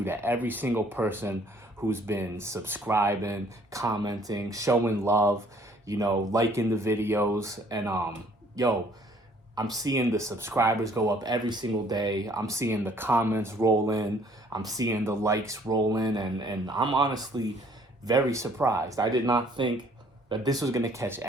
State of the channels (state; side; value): normal; both; correlation 0.60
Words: to every single person who's been subscribing, commenting, showing love, liking the videos. And I'm seeing the subscribers go up every single day. I'm seeing the comments roll in. I'm seeing the likes roll in. And I'm honestly very surprised. I did not think that this was going to catch